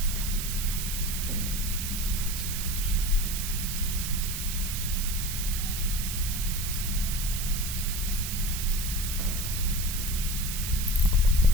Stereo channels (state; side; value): noise; right; hiss, 4 dB below the sound